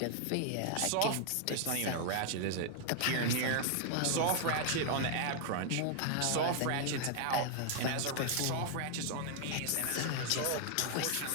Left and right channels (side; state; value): both; different; correlation 0.00